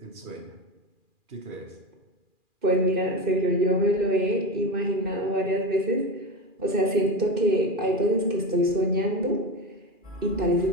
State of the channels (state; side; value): late; left; 2.4 ms